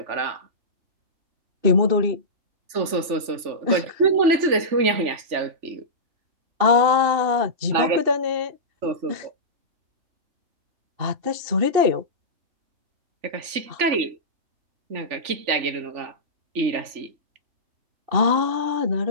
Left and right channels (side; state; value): left; late; 3.4 ms